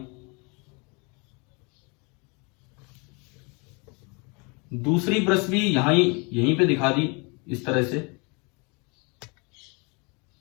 दूसरी ब्रश भी यहीं पे दिखा दी इस तरह से।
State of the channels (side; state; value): right; quieter; 31.3 dB